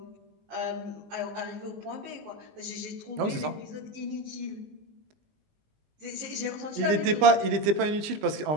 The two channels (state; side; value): late; left; 20 ms